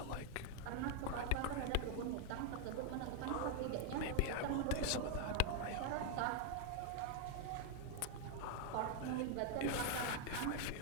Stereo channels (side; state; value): both; different; correlation 0.00